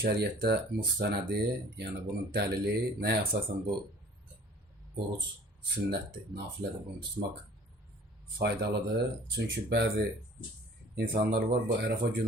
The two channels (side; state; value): both; normal; correlation 0.50